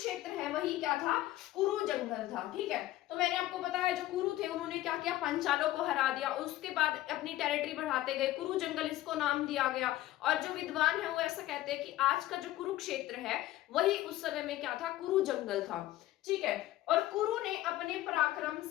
है वही क्या था, कुरु जंगल था, ठीक है। तो मैंने आपको बताया जो कुरु थे उन्होंने क्या किया, पांचालों को हरा दिया, उसके बाद अपनी टेरिटरी बढ़ाते गए, कुरु जंगल इसको नाम दिया गया। और जो विद्वान है वो ऐसा कहते हैं कि आज का जो कुरुक्षेत्र है वही उस समय में क्या था, कुरु जंगल था, ठीक है। और कुरु ने अपने पराक्रम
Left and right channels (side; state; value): right; quieter; 15.3 dB